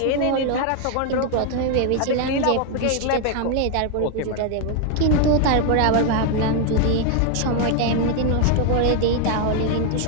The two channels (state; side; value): different; both; correlation 0.01